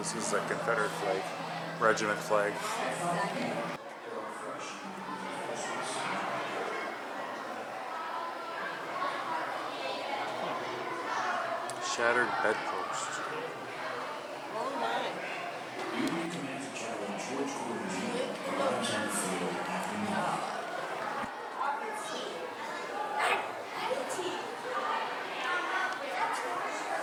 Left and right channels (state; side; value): identical; both; correlation 1.00